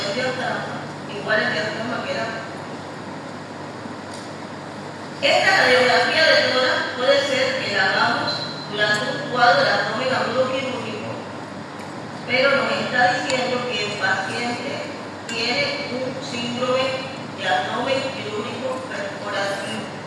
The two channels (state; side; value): identical; both; correlation 1.00